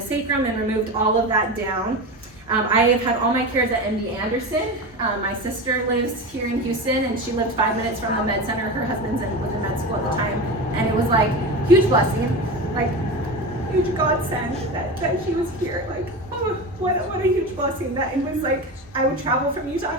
sacrum and removed all of that down. I have had all my cares at MD Anderson. My sister lives here in Houston, and she lived 5 minutes from the med center. Her husband's was in med school at the time, and it was like huge blessing, like huge godsend that she was here. Like, oh, what a huge blessing that it was. Like I would travel from Utah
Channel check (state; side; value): normal; both; correlation 0.25